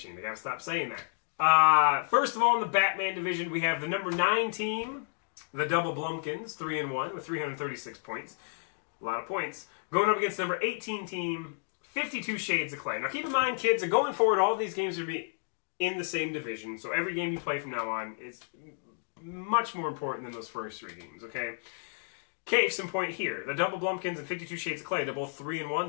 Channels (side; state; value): right; silent; digital silence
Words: I gotta stop saying that. First of all, in the Batman division, we have the number 9 team, the Double Blumpkins, 3-1 with 336 points. A lot of points. Going up against the number 18 team, 52 Shades of Clay. Now keep in mind, kids, that going forward, all of these games are going to be in the same division. So every game you play from now on is much more important than those first 3 games, okay? Case in point here. The Double Blumpkins and 52 Shades of Clay, they're both 3-1.